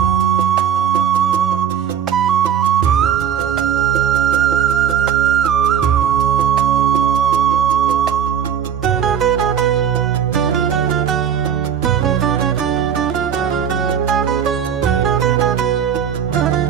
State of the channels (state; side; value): quieter; left; 8.4 dB